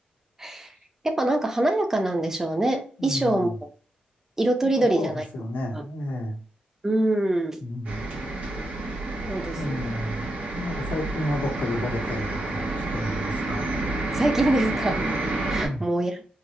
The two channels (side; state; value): both; normal; correlation 0.86